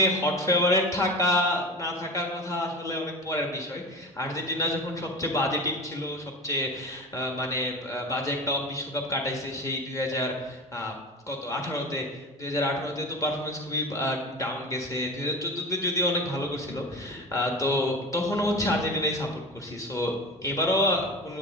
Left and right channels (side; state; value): both; normal; correlation 0.31